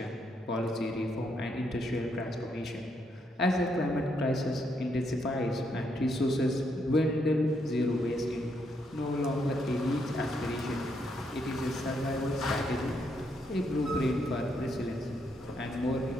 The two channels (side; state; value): both; normal; correlation 0.77